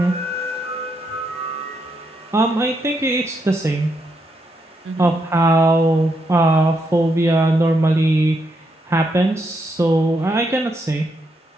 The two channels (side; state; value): both; normal; correlation 0.79